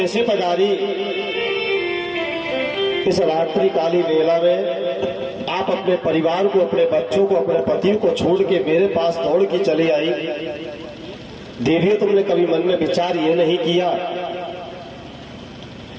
पधारी? इस रात्रि काली वेला में आप अपने परिवार को, अपने बच्चों को, अपने पति को छोड़ के मेरे पास दौड़ के चली आई। देवियों, तुमने कभी मन में विचार ये नहीं किया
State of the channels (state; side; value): identical; both; correlation 1.00